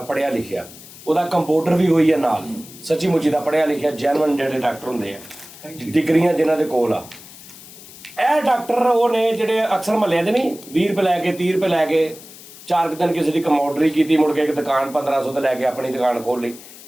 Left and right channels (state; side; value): noise; left; hiss, 18 dB below the sound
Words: पढ़िया लिखिया, ਉਹਦਾ ਕੰਪਿਊਟਰ ਵੀ ਹੋਈ ਹੈ ਨਾਲ, ਸੱਚੀ ਮੁੱਚੀ ਦਾ ਪੜ੍ਹਿਆ ਲਿਖਿਆ ਜੈਨੂਅਨ ਜਿਹੜੇ ਡਾਕਟਰ ਹੁੰਦੇ ਆ, ਡਿਗਰੀਆਂ ਜਿਨ੍ਹਾਂ ਦੇ ਕੋਲ ਆ। ਇਹ ਡਾਕਟਰ ਉਹ ਨੇ ਜਿਹੜੇ ਅਕਸਰ ਮਹੱਲਿਆਂ 'ਚ ਨਹੀਂ 20 ਰੁਪਏ ਲੈ ਕੇ 30 ਰੁਪਏ ਲੈ ਕੇ 4 ਕੁ ਦਿਨ ਕਿਸੇ ਦੀ ਕਮੋਡਰੀ ਕੀਤੀ, ਮੁੜ ਕੇ ਇੱਕ ਦੁਕਾਨ 1500 ਤੇ ਲੈ ਕੇ ਆਪਣੀ ਦੁਕਾਨ ਖੋਲ੍ਹ ਲਈ,